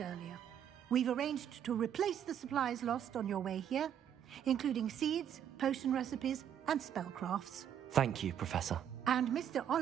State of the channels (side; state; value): left; quieter; 9.4 dB